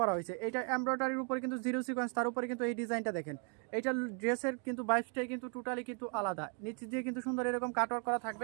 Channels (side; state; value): left; quieter; 39.1 dB